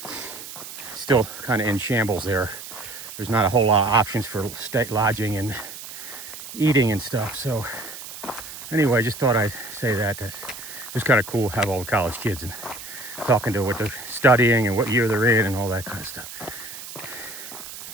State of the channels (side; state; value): right; noise; hiss, 12 dB below the sound